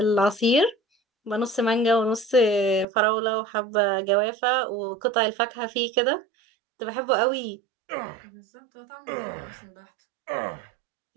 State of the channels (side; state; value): left; drops out; at 2.9 s